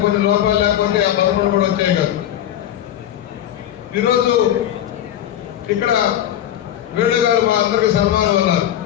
కొన్ని లోపాలు లేకపోతే ఆ 11 కూడా వచ్చాయి కాదు. ఈరోజు ఇక్కడ వేణు గారు మా అందరికి సన్మానం అన్నారు.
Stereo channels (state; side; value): quieter; right; 11.5 dB